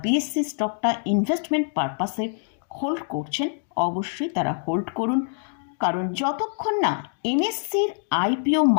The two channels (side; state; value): right; silent; digital silence